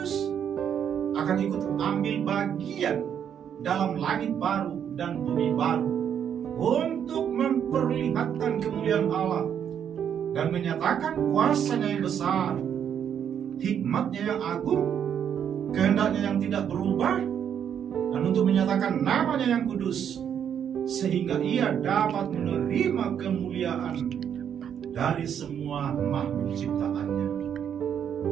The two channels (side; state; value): left; quieter; 8.7 dB